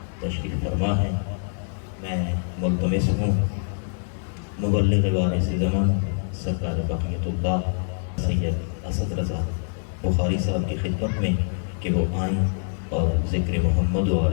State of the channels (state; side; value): silent; right; digital silence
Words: تشریف فرما ہے۔ میں ملتمس ہوں مبلغ وارث زمان سرکار بقیت اللہ سید اسد رضا بخاری صاحب کی خدمت میں کہ وہ آئیں اور ذکر محمد و